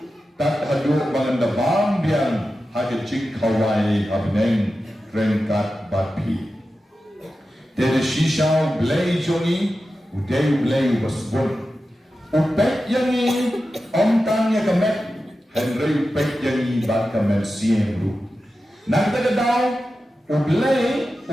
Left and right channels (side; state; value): both; normal; correlation 0.92